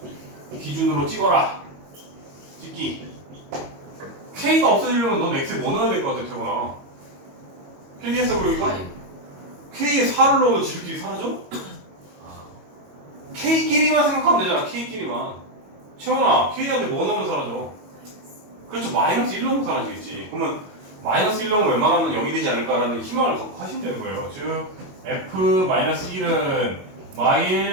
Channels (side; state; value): left; late; 22 ms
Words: 기준으로 찍어라. 찍기. K가 없어지려면 넌 X에 뭐 넣어야 될 것 같아, 태곤아? 필기했어, 그리고 이거? K에 4를 넣으면 지들끼리 사라져? K끼리만 생각하면 되잖아, K끼리만. 채원아, K한테 뭐 넣으면 사라져? 그렇죠, 마이너스 1 넣으면 사라지겠지. 그러면 마이너스 1 넣으면 웬만하면 0이 되지 않을까라는 희망을 갖고 하시면 되는 거예요. 즉, F-1은